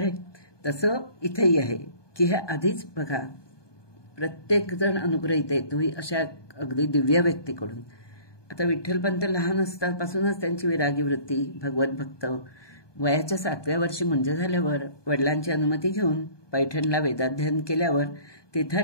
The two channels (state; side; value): late; right; 1.2 ms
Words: तसं इथेही आहे की हे आधीच बघा, प्रत्येक जण अनुग्रहित येतोही अशा अगदी दिव्य व्यक्तीकडून. आता विठ्ठलपंत लहान असतापासूनच त्यांची विरागी वृत्ती, भगवत भक्त. वयाच्या 7व्या वर्षी मुंज झाल्यावर वडिलांची अनुमती घेऊन पैठणला वेदाध्ययन केल्यावर